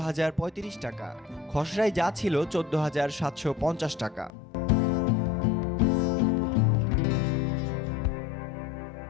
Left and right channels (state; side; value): drops out; right; at 4.3 s